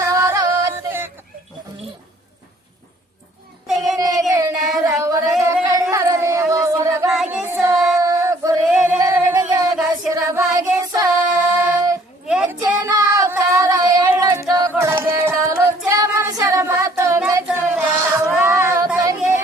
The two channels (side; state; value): both; normal; correlation 0.59